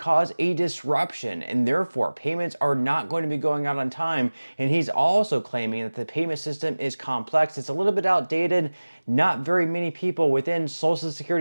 a disruption, and therefore payments are not going to be going out on time. And he's also claiming that the payment system is complex. It's a little bit outdated. Not very many people within Social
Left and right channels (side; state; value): both; inverted; correlation -1.00